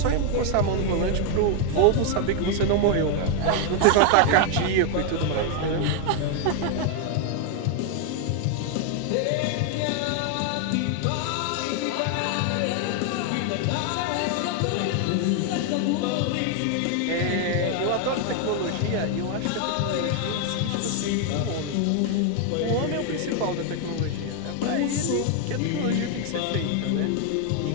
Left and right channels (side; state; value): both; different; correlation 0.01